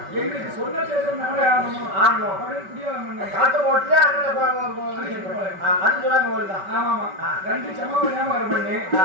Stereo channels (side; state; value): left; late; 5.3 ms